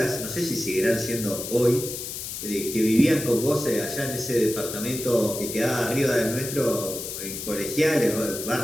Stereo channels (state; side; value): noise; left; hiss, 7 dB below the sound